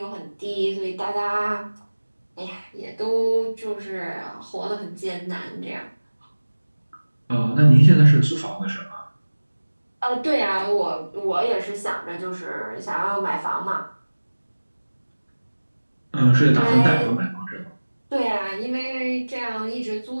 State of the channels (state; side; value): inverted; both; correlation -1.00